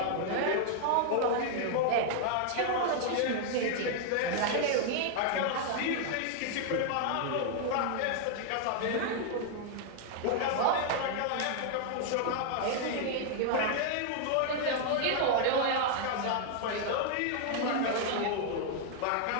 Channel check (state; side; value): different; both; correlation 0.00